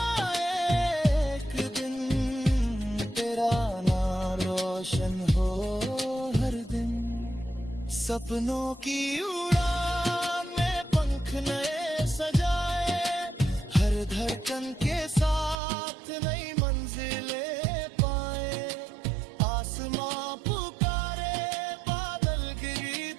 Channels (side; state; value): left; drops out; at 15.6 s